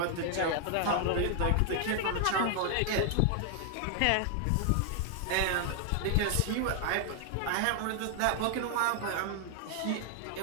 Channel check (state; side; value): different; both; correlation 0.00